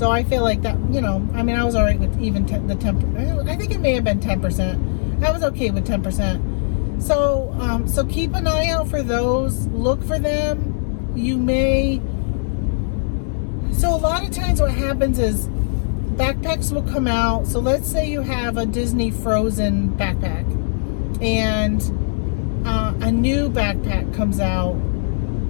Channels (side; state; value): right; silent; 66 dB below the other